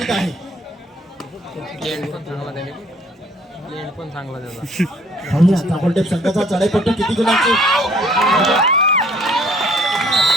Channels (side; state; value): both; normal; correlation 0.59